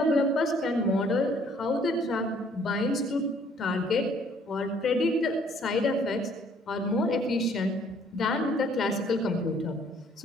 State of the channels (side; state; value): both; normal; correlation 0.61